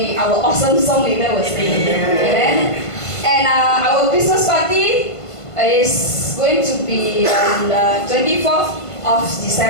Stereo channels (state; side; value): late; right; 1.5 ms